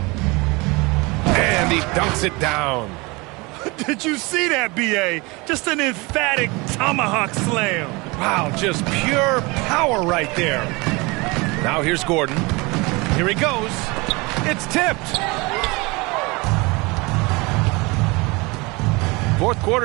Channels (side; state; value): left; quieter; 25.5 dB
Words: And he dunks it down. Did you see that, B.A.? Just an emphatic tomahawk slam. Wow, just pure power right there. Now here's Gordon. Here he goes. It's tipped. Fourth